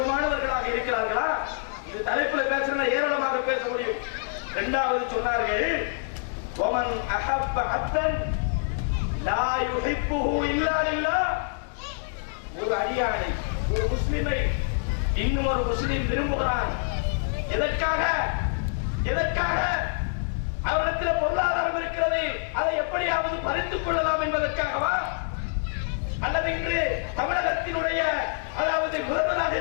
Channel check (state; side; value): silent; right; digital silence